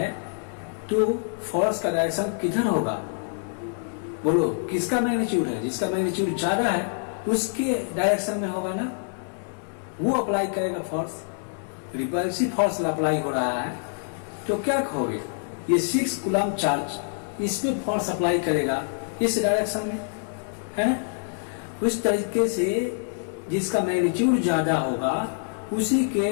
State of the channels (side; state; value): right; silent; 61 dB below the other